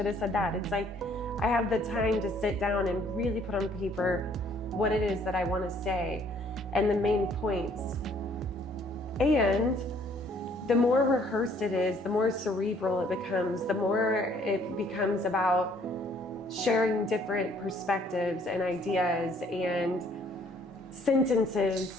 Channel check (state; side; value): normal; both; correlation 0.62